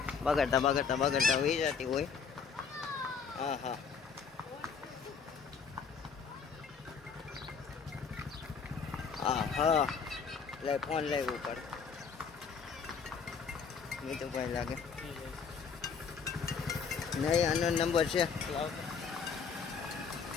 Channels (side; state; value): right; quieter; 6.0 dB